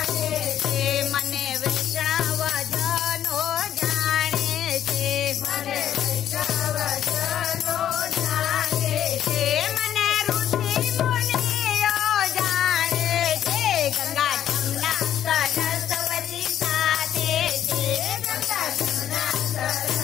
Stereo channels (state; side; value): quieter; right; 10.6 dB